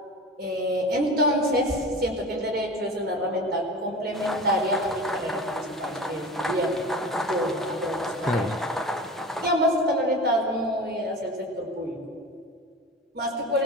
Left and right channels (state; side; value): normal; both; correlation 0.33